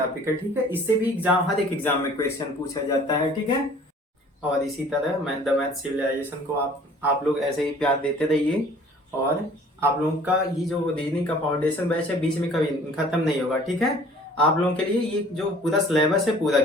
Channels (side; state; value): both; normal; correlation 0.51